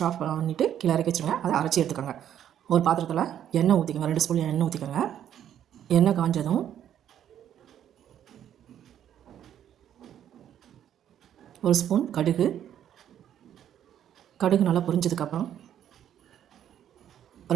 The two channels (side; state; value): left; quieter; 10.3 dB